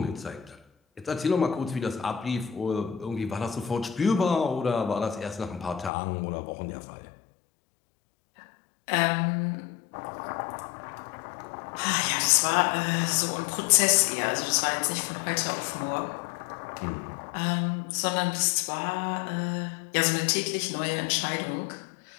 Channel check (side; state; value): right; drops out; at 5.9 s